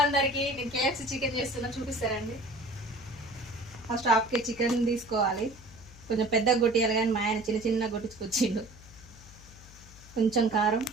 అందరికి, నేను KFC chicken చేస్తున్నా, చూపిస్తారండి. ఫస్ట్ హాఫ్ కేజీ చికెన్ తీసుకోవాలి. కొంచెం పెద్దగా కొట్టియాలి, కానీ మా ఆయన చిన్న చిన్న కొట్టించుకొచ్చిండు. కొంచెం కారం,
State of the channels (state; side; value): noise; left; hum, 19 dB below the sound